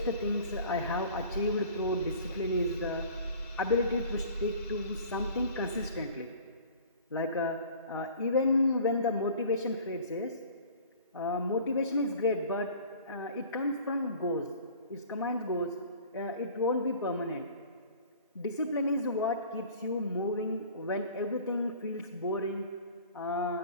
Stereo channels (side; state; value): both; inverted; correlation -0.46